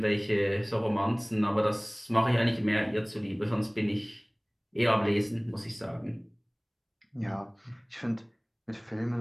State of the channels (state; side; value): identical; both; correlation 1.00